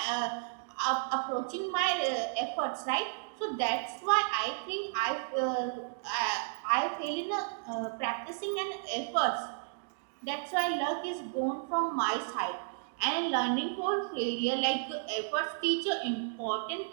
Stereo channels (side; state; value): left; silent; digital silence